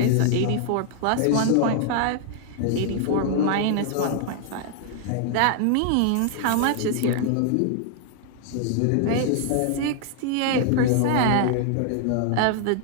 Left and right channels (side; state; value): both; different; correlation 0.00